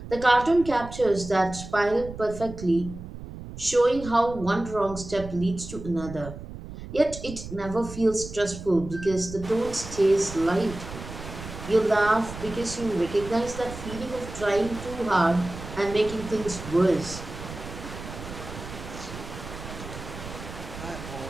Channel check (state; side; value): noise; right; rumble, 12 dB below the sound